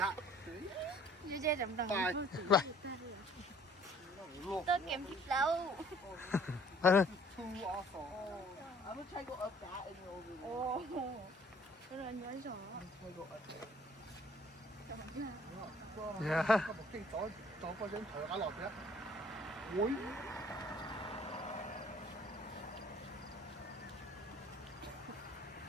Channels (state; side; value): normal; both; correlation 0.56